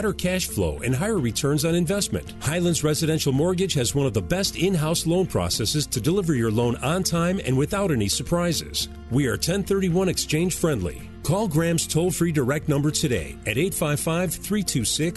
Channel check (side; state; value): both; identical; correlation 1.00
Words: cash flow and higher returns on investment. Highlands Residential Mortgage has one of the best in-house loan processes to deliver your loan on time and without any surprises. We are 1031 exchange friendly. Call Graham's toll-free direct number today at